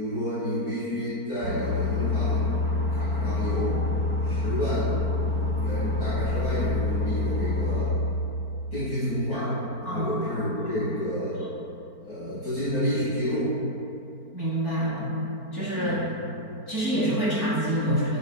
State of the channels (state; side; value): late; right; 4.4 ms